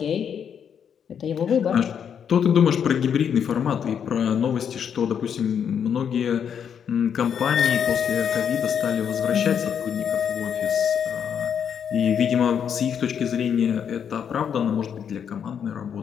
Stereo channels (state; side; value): quieter; right; 7.9 dB